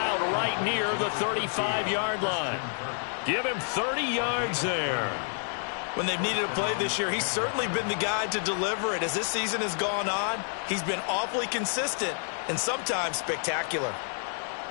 right near the 35-yard line. Give him 30 yards there. When they've needed a play this year, he's certainly been the guy to deliver it. As this season has gone on, he's been awfully consistent and sometimes spectacular.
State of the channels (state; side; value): silent; right; 59 dB below the other